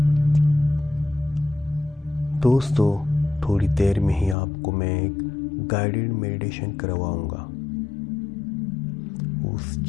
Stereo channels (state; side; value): drops out; right; at 4.4 s